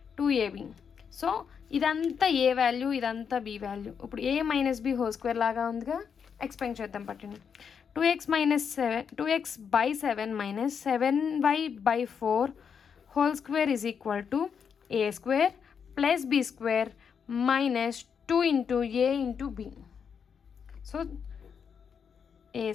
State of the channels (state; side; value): quieter; right; 6.9 dB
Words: 2ab. So ఇదంతా a వాల్యూ, ఇదంతా b వాల్యూ. ఇప్పుడు a minus B whole square లాగా ఉందిగా, ఎక్స్పాండ్ చేద్దాం పట్టండి. 2x/7 minus 7y/4 whole square is equal to a² plus b² minus 2 into a into b. So